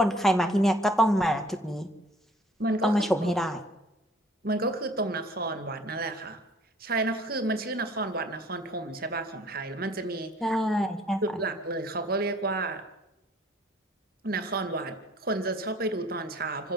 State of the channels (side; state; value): both; normal; correlation 0.55